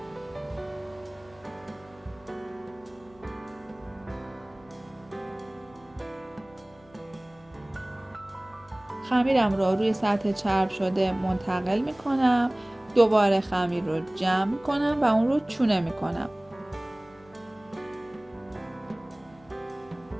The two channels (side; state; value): left; noise; hum, 27 dB below the sound